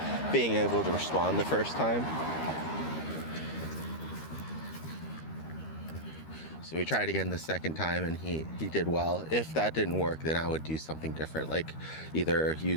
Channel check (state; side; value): late; right; 13 ms